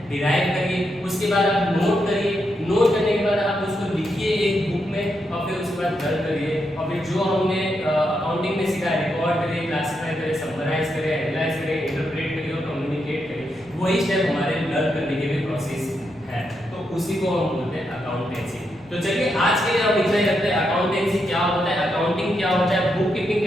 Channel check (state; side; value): noise; left; rumble, 27 dB below the sound